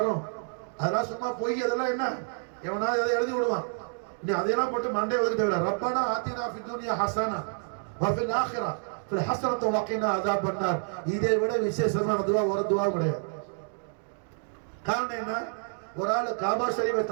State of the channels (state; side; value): silent; left; 55 dB below the other